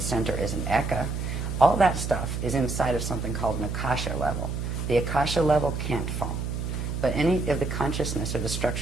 center is an Eka. All that stuff is inside of something called an Akasha level. The Akasha level can't fall, but any of the consciousness or the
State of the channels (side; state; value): right; noise; hum, 3 dB below the sound